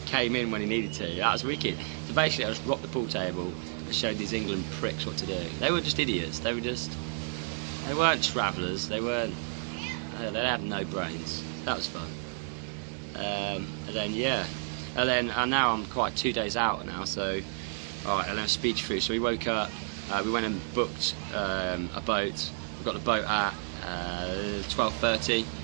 came in when he needed to. That was wicked. So basically I just rocked the pool table and showed these England pricks what to do. They were just idiots. They weren't travellers. They had no brains. That was fun. And then yeah, and now I'm quite 2 days out now, so alright, and then speech through. So we woke up, we went and booked a boat. We got the boat at 12:30.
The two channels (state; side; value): silent; left; digital silence